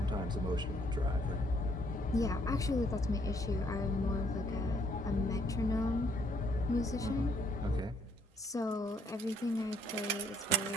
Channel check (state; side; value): normal; both; correlation 0.68